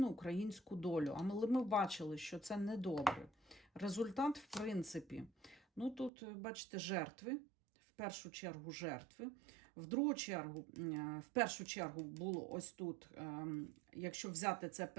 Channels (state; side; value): drops out; left; at 6.1 s